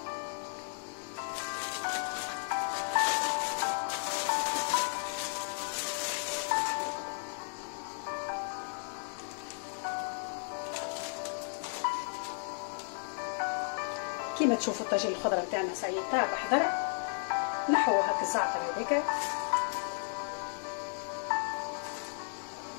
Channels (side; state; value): right; silent; 55 dB below the other